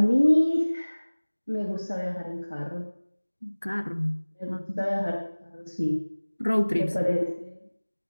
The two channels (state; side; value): inverted; both; correlation -1.00